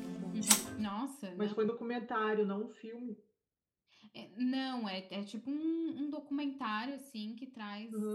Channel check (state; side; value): identical; both; correlation 1.00